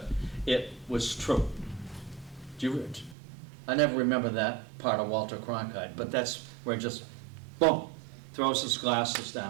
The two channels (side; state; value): left; drops out; at 3.2 s